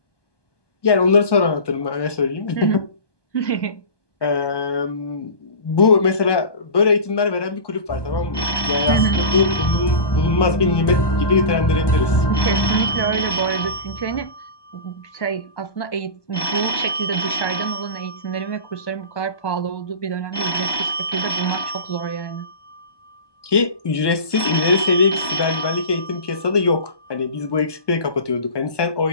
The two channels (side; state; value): right; late; 1.2 ms